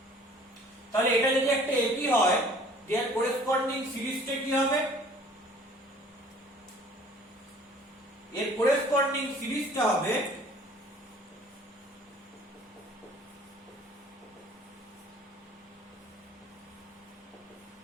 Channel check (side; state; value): both; normal; correlation 0.52